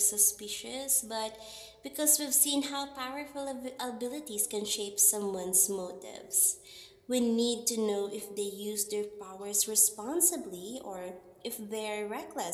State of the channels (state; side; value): identical; both; correlation 1.00